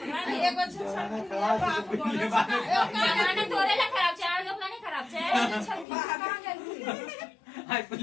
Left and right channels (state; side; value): drops out; right; at 5.9 s